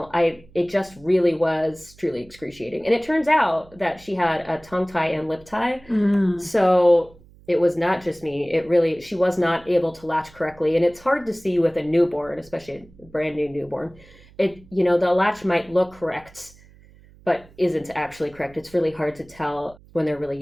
just really was truly excruciating. And it turns out that she had a tongue tie and lip tie. So it was not just me. She was not able to latch correctly. And it's hard to see with a newborn, especially a brand new newborn. The latch might look correct, but isn't actually correct. It's really hard to tell when they're really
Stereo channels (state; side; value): noise; right; hum, 25 dB below the sound